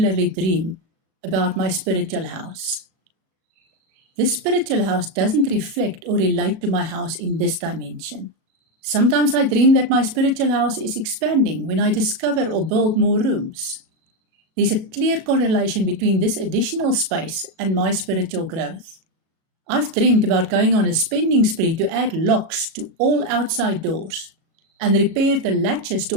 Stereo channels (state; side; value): late; left; 37 ms